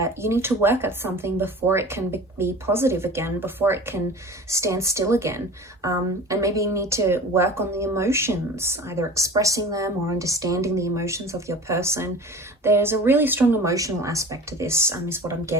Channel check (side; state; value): both; normal; correlation 0.38